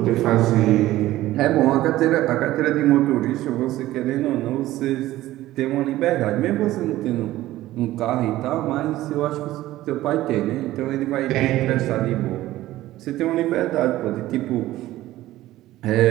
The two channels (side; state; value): left; quieter; 15.6 dB